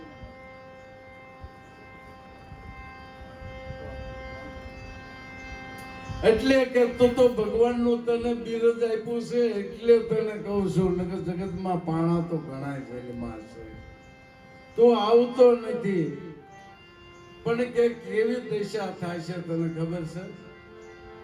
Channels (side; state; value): both; identical; correlation 1.00